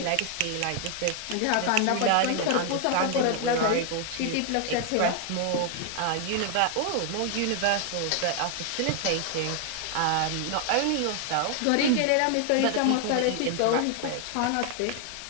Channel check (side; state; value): both; different; correlation 0.00